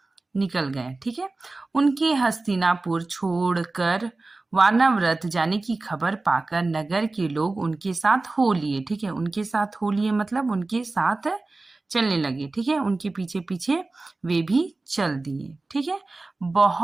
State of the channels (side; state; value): left; quieter; 3.3 dB